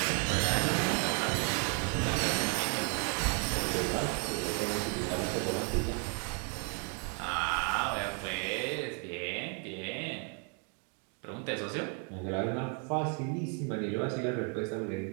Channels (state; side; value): quieter; left; 38.4 dB